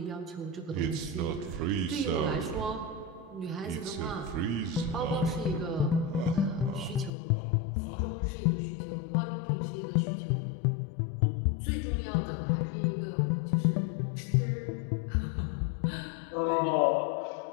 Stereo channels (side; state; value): right; drops out; at 7.1 s